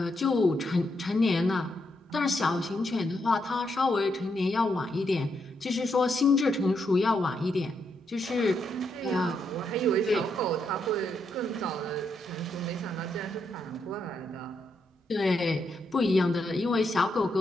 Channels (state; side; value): normal; both; correlation 0.80